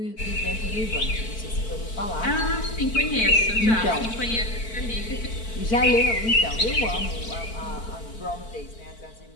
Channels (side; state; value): right; late; 4.5 ms